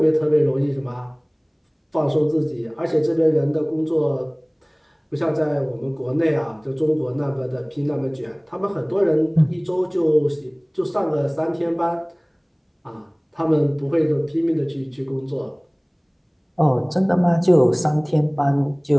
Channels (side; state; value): both; identical; correlation 1.00